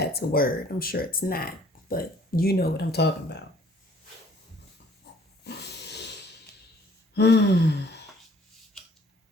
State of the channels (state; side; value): normal; both; correlation 0.57